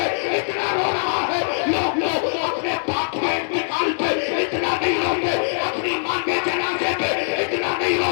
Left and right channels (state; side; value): silent; right; digital silence